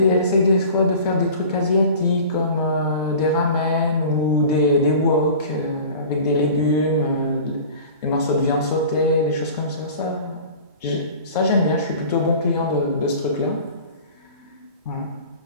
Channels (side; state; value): both; inverted; correlation -0.41